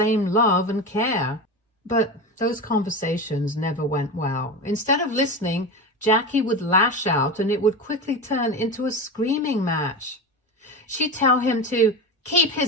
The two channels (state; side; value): normal; both; correlation 0.24